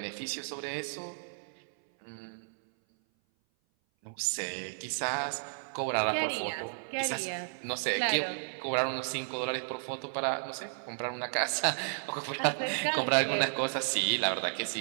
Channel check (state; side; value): silent; left; 56 dB below the other